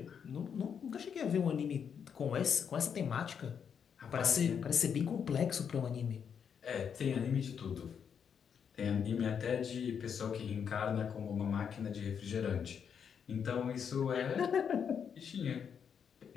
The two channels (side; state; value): right; quieter; 7.3 dB